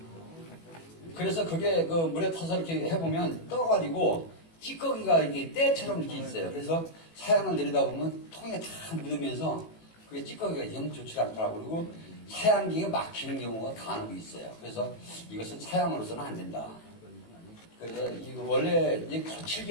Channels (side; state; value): right; late; 18 ms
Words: 그래서 그게 물에 타서 이렇게 해보면 떠가지고 찌꺼기가 이렇게 때처럼 이렇게 있어요. 그래서 사양을 내리다 보면 통에 다 묻으면서 그게 찌꺼기가 영 좋지 않더라고요. 그리고 사양기가 막히는 경우가 간혹 있어요. 그래서 이것은 사양으로서는 안 된다. 그래서 이거 원래 이제